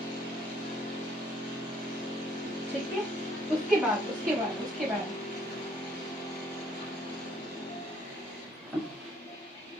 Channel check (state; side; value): normal; both; correlation 0.64